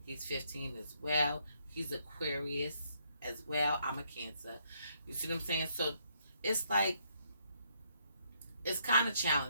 He's 15 as well. He's Aquarius as well. I'm a Cancer. You see what I'm saying? So it's like, it's kind of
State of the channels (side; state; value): both; inverted; correlation -0.72